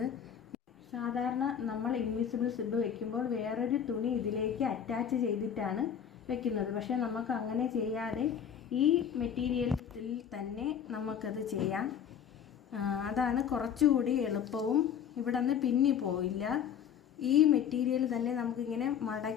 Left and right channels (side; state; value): right; quieter; 8.3 dB